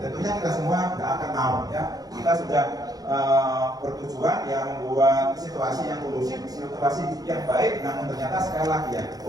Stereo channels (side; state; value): left; late; 0.18 ms